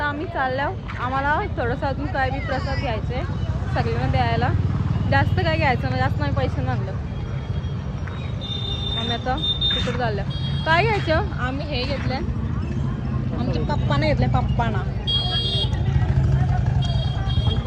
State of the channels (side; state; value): both; identical; correlation 1.00